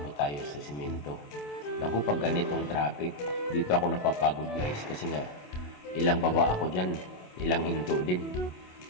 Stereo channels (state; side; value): late; right; 27 ms